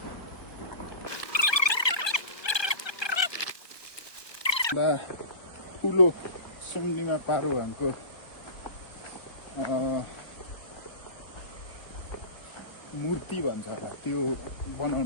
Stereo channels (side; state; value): right; late; 1.3 ms